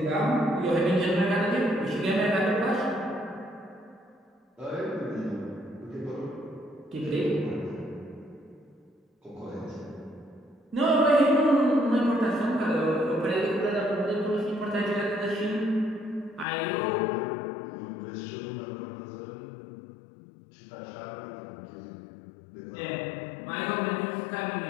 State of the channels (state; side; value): drops out; right; at 16.4 s